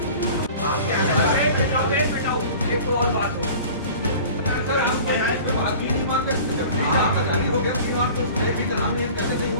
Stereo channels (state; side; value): inverted; both; correlation -0.43